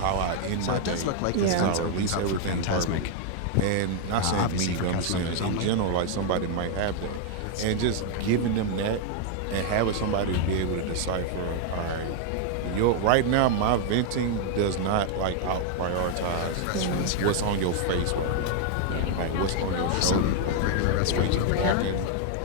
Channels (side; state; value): both; different; correlation 0.00